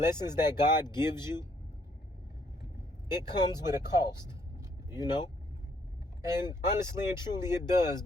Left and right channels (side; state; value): both; normal; correlation 0.68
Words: that God gives you, it comes with a cost, you know? And honestly and truly it does,